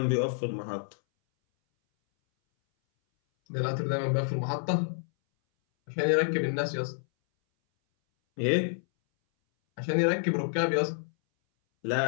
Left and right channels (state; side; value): silent; right; 59 dB below the other